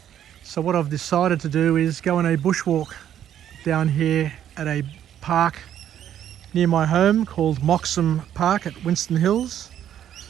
so what I've decided to do is go on a bushwalk down here at a park near my home called Moxham Park at Winston Hills,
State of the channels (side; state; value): left; quieter; 10.4 dB